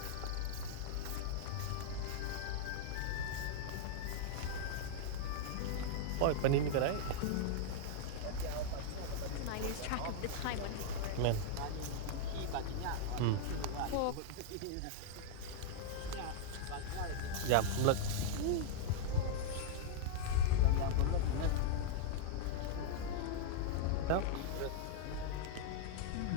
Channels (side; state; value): both; different; correlation -0.01